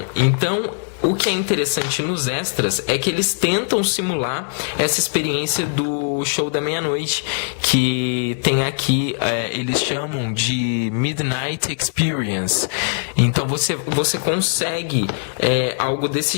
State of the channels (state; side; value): silent; right; digital silence